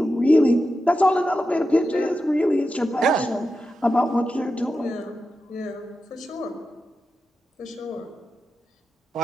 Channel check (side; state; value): both; normal; correlation 0.90